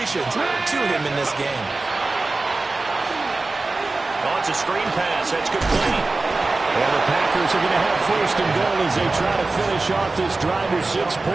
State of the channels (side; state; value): left; quieter; 3.4 dB